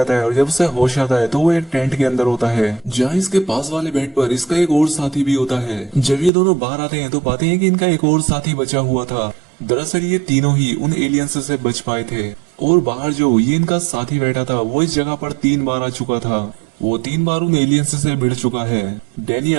है और जब उसे होश आता है तो वो एक टेंट के अंदर होता है, जहाँ इसके पास वाले बेड पर इसका एक और साथी भी होता है। जब ये दोनों बाहर आते हैं तो पाते हैं कि इनका एक और साथी बचा हुआ था। दरअसल ये तीनों ही उन एलियंस से बच पाए थे और बाहर जो ये इनका साथी बैठा था वो इस जगह पर 3 बार आ चुका था। वो 3 बार उन एलियंस से भिड़ चुका है।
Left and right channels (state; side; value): drops out; left; at 6.3 s